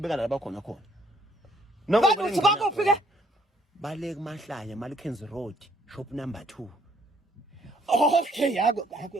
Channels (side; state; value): both; normal; correlation 0.66